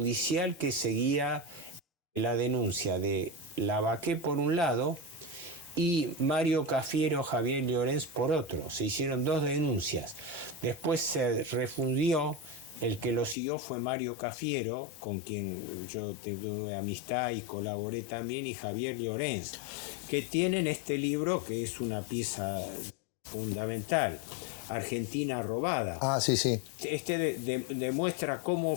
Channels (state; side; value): drops out; right; at 13.4 s